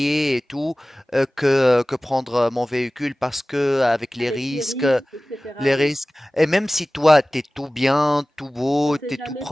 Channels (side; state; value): both; normal; correlation 0.98